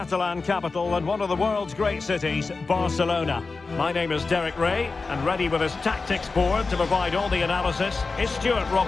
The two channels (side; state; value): right; quieter; 4.1 dB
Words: capital and one of the world's great cities, Barcelona. My name is Derek Ray, and ready with his tactics board to provide all the analysis is Stuart